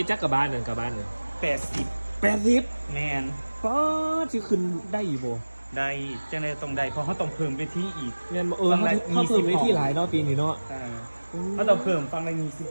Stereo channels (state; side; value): inverted; both; correlation -1.00